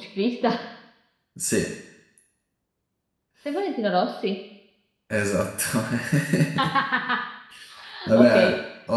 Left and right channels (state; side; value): identical; both; correlation 1.00